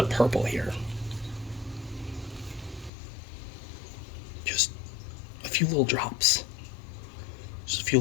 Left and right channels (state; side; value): drops out; right; at 2.9 s